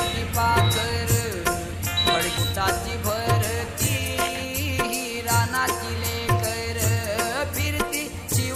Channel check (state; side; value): identical; both; correlation 1.00